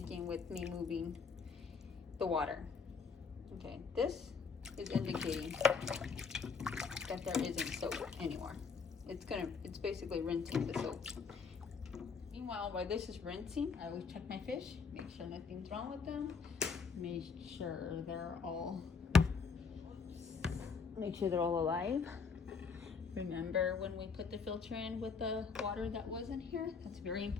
with me moving the water. Okay, this is indicating that there isn't soap anymore. It's basically rinsing the soap. Meanwhile, while this is rinsing, I always check my fish, make sure nothing's wrong with them, make sure they're all alive. Remember when we put the filter in with the water that wasn't here? That's very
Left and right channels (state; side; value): quieter; right; 5.3 dB